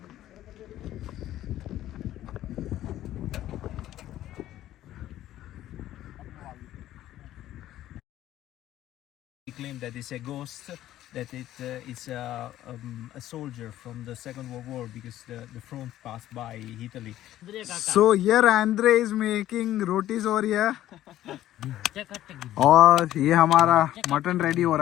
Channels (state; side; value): quieter; right; 13.4 dB